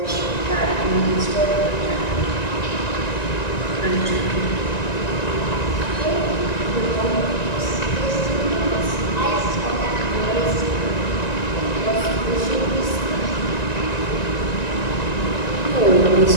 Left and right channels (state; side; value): late; right; 1.9 ms